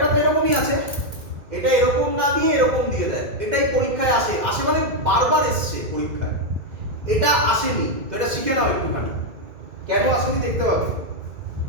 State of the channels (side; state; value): left; late; 2.2 ms